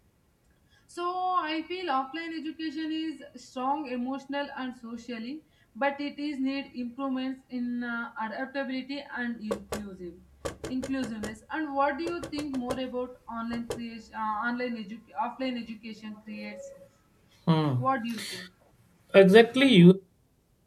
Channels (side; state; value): both; identical; correlation 1.00